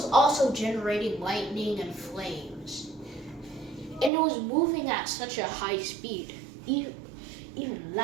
also generating lightning and flames. And it was moving at such a high speed, even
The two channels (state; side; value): drops out; left; at 4.1 s